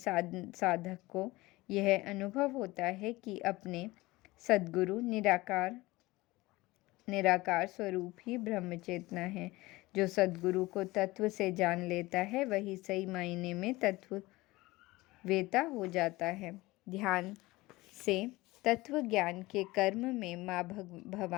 को यह अनुभव होता है कि अपने सद्गुरु निराकार स्वरूप ही ब्रह्म चेतना है। जो सद्गुरु को तत्व से जान लेता है, वही सही मायने में तत्ववेता हो जाता है। ध्यान से तत्व ज्ञान के कर्म में माँ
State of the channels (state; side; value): quieter; right; 20.2 dB